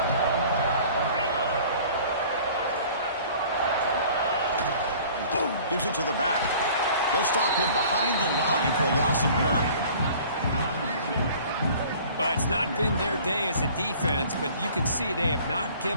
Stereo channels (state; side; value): inverted; both; correlation -0.49